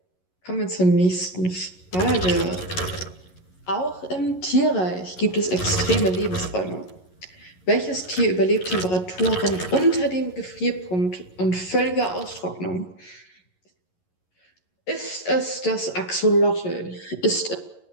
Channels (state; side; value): late; right; 11 ms